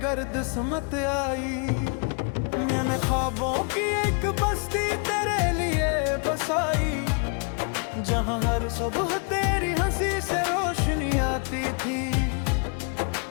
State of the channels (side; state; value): right; quieter; 37.0 dB